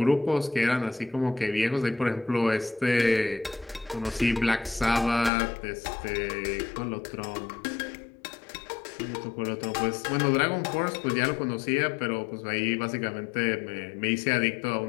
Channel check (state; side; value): drops out; right; at 5.3 s